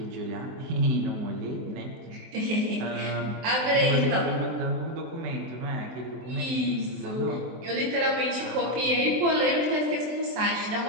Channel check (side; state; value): left; late; 23 ms